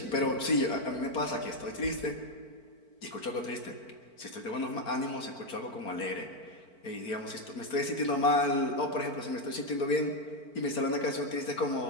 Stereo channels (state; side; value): late; right; 4.5 ms